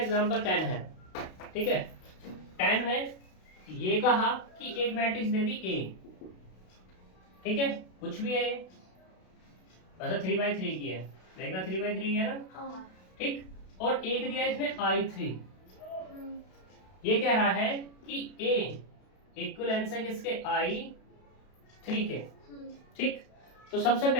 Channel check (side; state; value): right; late; 32 ms